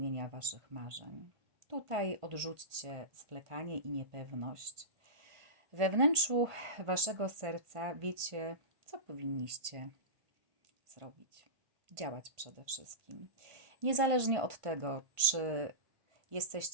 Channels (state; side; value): late; left; 1.5 ms